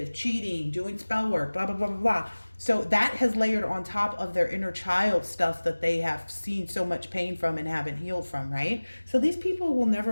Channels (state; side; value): inverted; both; correlation -1.00